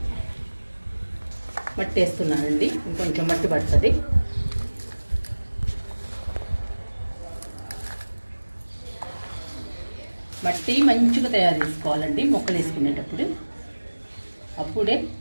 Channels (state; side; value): inverted; both; correlation -1.00